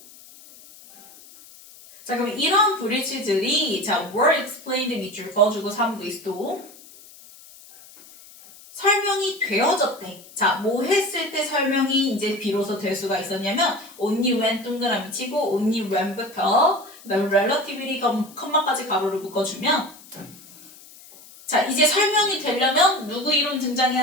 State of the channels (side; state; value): left; noise; hiss, 21 dB below the sound